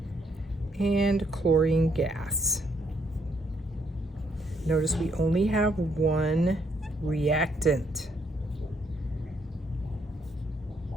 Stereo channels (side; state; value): both; normal; correlation 0.72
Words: and chlorine gas. Notice we only have one reactant.